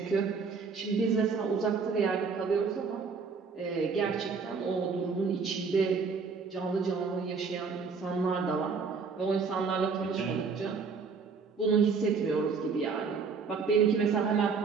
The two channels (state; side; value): quieter; left; 5.2 dB